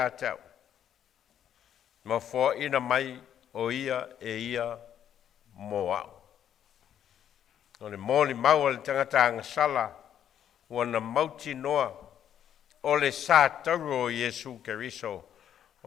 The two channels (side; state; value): right; quieter; 9.8 dB